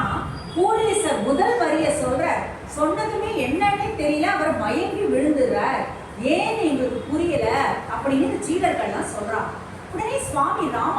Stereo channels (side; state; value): both; identical; correlation 1.00